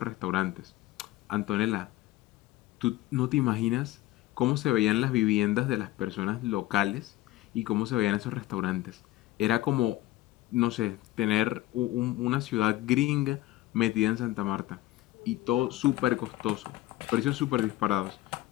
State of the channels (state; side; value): quieter; right; 16.4 dB